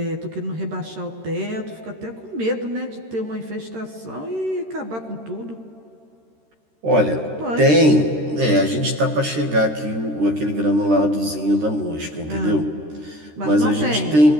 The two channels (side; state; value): left; late; 13 ms